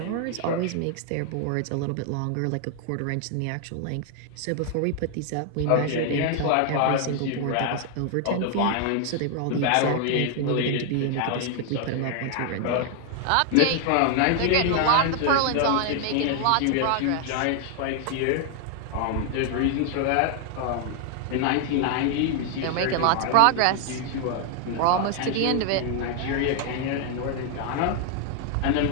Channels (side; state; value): both; different; correlation 0.00